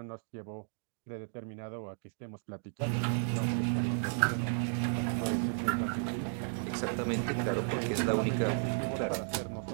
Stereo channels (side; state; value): left; silent; digital silence